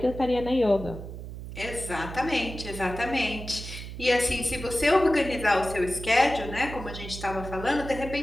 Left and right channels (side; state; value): right; noise; hum, 10 dB below the sound